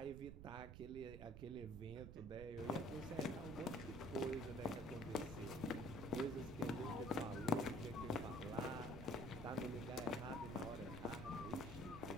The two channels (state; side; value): noise; right; rumble, 9 dB below the sound